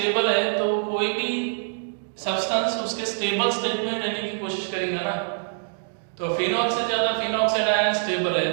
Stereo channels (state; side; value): silent; left; digital silence